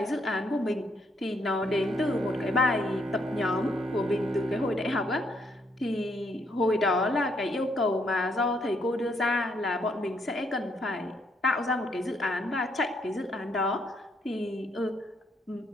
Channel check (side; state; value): both; normal; correlation 0.73